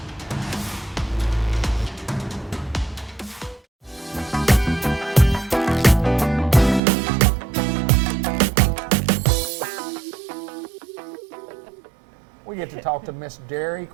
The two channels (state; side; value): drops out; left; at 6.8 s